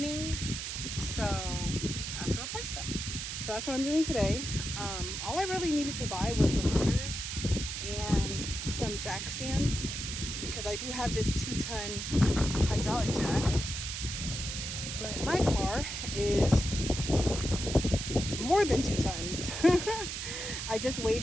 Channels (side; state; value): right; noise; hiss, 5 dB below the sound